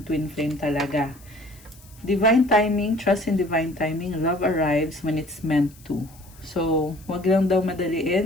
twin flame talaga. Divine timing. Trust in divine timing. Love arrives when it's meant to. So, wag lang daw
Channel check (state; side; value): noise; left; hiss, 25 dB below the sound